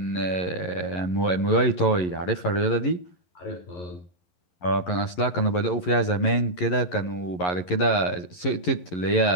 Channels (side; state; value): right; late; 11 ms